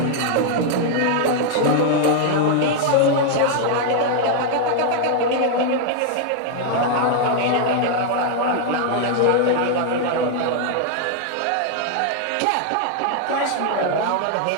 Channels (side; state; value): both; different; correlation 0.00